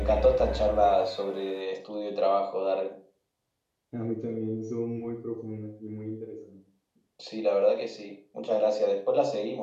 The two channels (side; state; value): both; identical; correlation 1.00